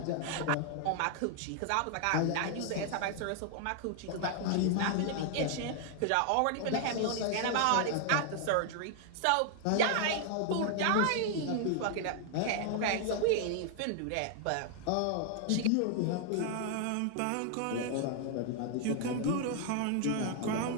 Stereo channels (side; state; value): both; different; correlation 0.00